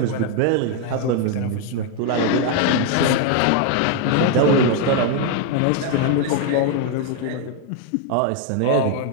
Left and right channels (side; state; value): both; different; correlation 0.01